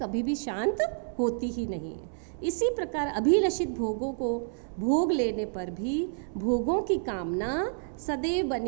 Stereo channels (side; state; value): left; silent; 58 dB below the other